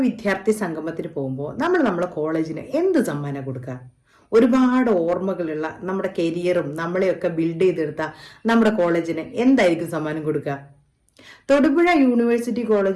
വിദ്യാർത്ഥി സംഗമത്തിന് പോകുമ്പോൾ നമ്മളെ കോളേജിന് എന്ത് സമ്മാനം കൊടുക്കുക? ഒരുപാട് ഓർമ്മകളുള്ള നമ്മുടെ കരിയറും നമ്മളെയൊക്കെ ബിൽഡ് ചെയ്തെടുത്ത നമ്മുടെ കോളേജിന് എന്തായിരിക്കും സമ്മാനം കൊടുക്കുക? തൊടുപുഴ യൂണിവേഴ്സിറ്റി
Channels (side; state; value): both; identical; correlation 1.00